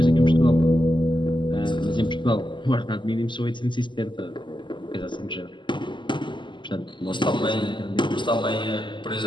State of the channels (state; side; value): late; right; 0.23 ms